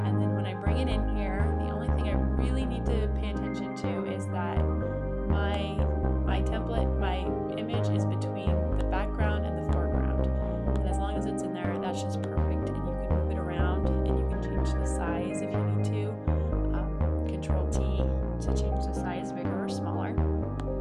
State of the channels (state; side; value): identical; both; correlation 1.00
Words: And then when I bring it in here, the only thing I really need to pay attention to is that my template, my image is between the background and the foreground. And as long as it's in there, that's just perfect. And you can move it around, and you can change the size if you need to. Control T to change the size bigger or smaller.